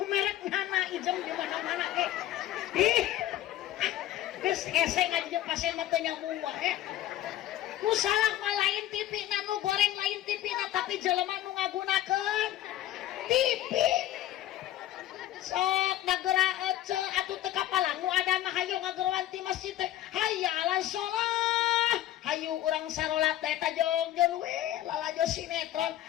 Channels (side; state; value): right; quieter; 13.4 dB